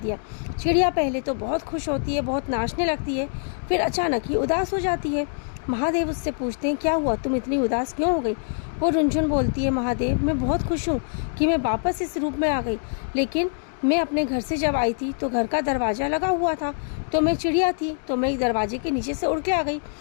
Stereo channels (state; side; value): silent; right; digital silence